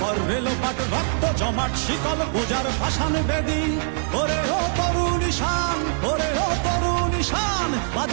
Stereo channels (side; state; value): left; silent; 63 dB below the other